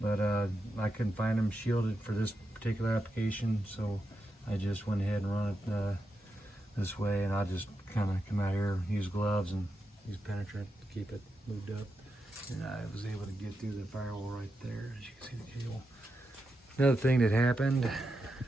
but I couldn't find them shielded for this particular application, so I just went ahead and run it this way, and I just kind of come out here, use gloves and use penetrant to keep it moved up, and I was able to get through the firewall right there, as you can see the cable. Another thing that happened,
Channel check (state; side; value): normal; both; correlation 0.87